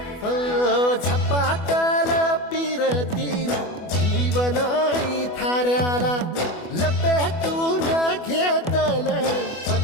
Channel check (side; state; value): right; late; 24 ms